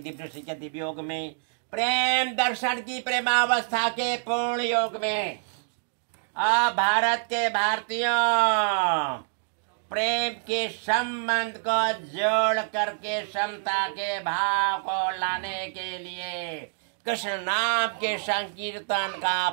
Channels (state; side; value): silent; left; digital silence